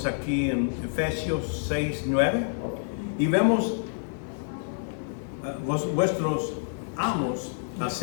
aquí en Efesios 6:9 y vemos vuestros amos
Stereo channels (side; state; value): right; silent; digital silence